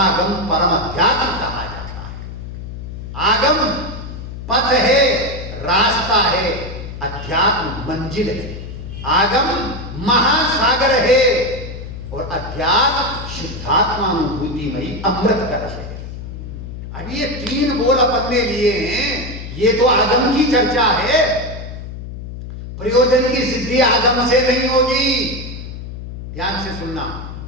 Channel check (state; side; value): noise; left; hum, 10 dB below the sound